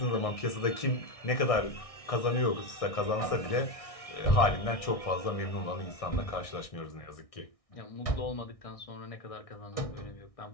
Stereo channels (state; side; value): late; right; 1.6 ms